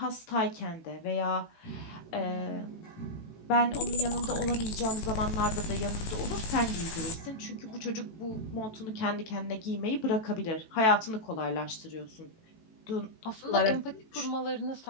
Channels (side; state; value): right; late; 18 ms